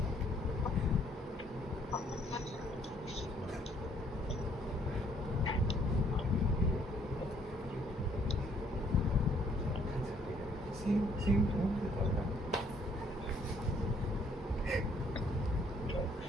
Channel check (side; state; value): both; normal; correlation 0.65